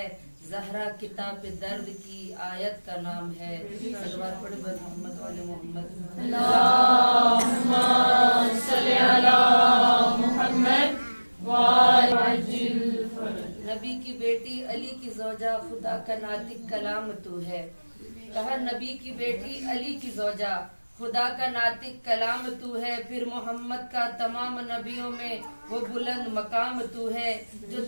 زہرا کتاب درد کی آیت کا نام ہے۔ صلوات پڑھے بر محمد والے محمد۔ اللهم صل على محمد وآل عجل نبی کی بیٹی علی کی زوجہ خدا کا ناطق کلام تو ہے، کہا نبی کی بیٹی علی کی زوجہ خدا کا ناطق کلام تو ہے، پھر محمد کا تمام نبیوں میں وہ بلند مقام تو ہے، جو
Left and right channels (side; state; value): both; inverted; correlation -1.00